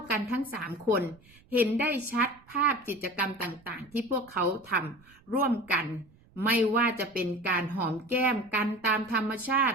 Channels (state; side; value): noise; right; rumble, 28 dB below the sound